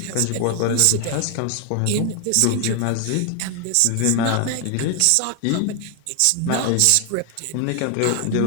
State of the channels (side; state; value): both; different; correlation 0.00